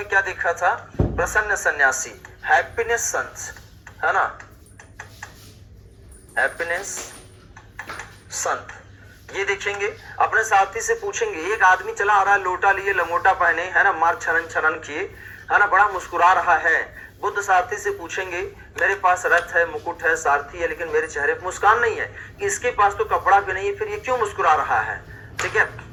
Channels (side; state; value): both; identical; correlation 1.00